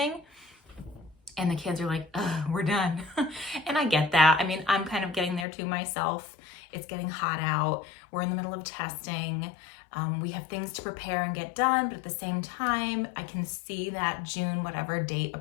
and the kids are like, we're done. And I get that. I mean, I'm kind of getting there too myself. It's getting hot out. We're in the middle of testing. We have things to prepare and get done, but at the same time, I can see that June, whatever date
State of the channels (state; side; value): drops out; right; at 5.5 s